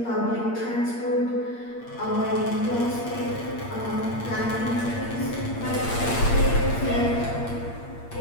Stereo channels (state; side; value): late; right; 8.6 ms